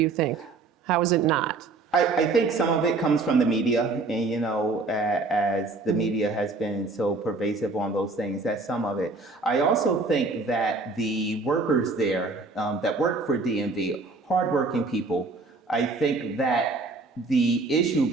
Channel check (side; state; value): left; quieter; 3.7 dB